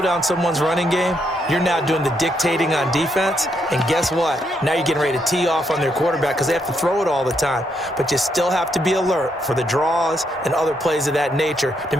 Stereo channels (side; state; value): both; normal; correlation 0.77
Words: down someone's running game, you're now doing the dictating on defense. And guess what? Now you're getting ready to tee off on their quarterback because they have to throw it all the time. But you still have to be alert for the draws and other plays of that nature to